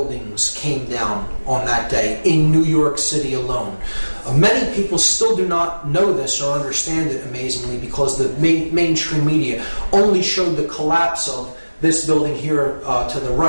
came down on that day in New York City alone. Many people still do not know this or understand it, amazingly, because the mainstream media only showed the collapse of this building here to the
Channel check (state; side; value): inverted; both; correlation -1.00